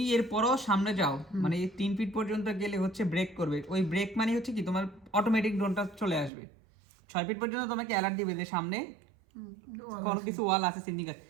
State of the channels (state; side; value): drops out; left; at 6.3 s